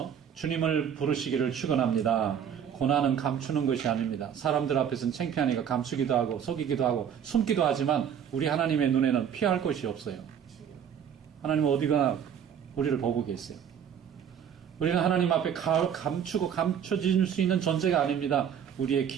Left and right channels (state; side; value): quieter; left; 8.4 dB